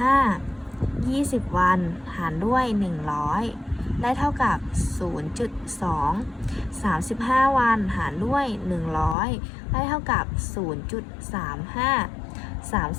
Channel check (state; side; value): drops out; right; at 9.2 s